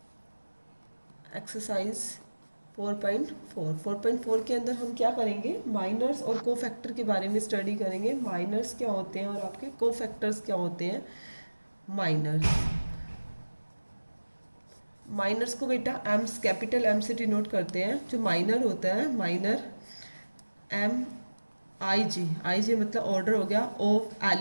Exercise 4.4 के अंदर हम क्या करेंगे, माइनर्स और कोफैक्टर के बारे में स्टडी करेंगे। माइनर्स क्या होते हैं और आपके कोफैक्टर्स क्या होते हैं। माइनर्स को बेटा एम्स कैपिटल एम से डिनोट करते हैं। जो माइनर होता है, माइनर आई जे मतलब ऑर्डर हो गया ऑफ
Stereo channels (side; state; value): both; inverted; correlation -1.00